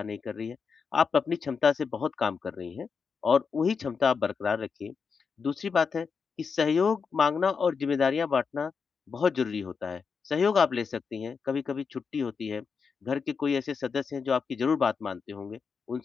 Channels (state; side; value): quieter; right; 5.6 dB